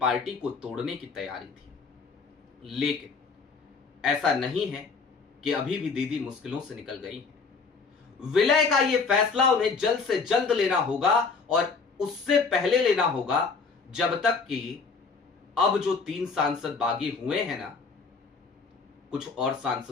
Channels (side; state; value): right; quieter; 4.8 dB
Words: को तोड़ने की तैयारी थी। लेकिन ऐसा नहीं है कि अभी भी दीदी मुश्किलों से निकल गई है। विलय का यह फैसला उन्हें जल्द से जल्द लेना होगा और उससे पहले लेना होगा जब तक कि अब जो 3 सांसद बागी हुए हैं ना, कुछ और